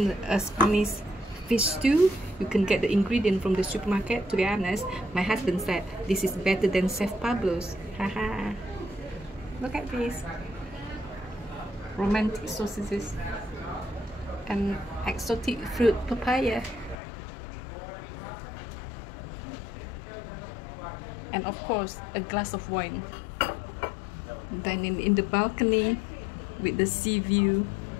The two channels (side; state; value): right; drops out; at 16.9 s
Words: Spanish fish stew. You can get the ingredient from the supermarket. To be honest, my husband said this is better than Chef Pablo's. Haha! Look at this. Romantic sausages and exotic fruit papaya. And of course, a glass of wine. Dining in the balcony with the sea view.